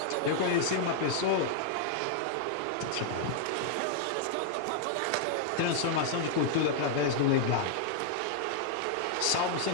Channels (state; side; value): different; both; correlation -0.01